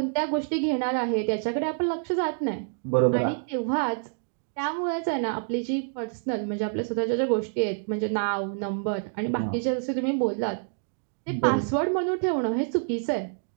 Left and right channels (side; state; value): left; silent; digital silence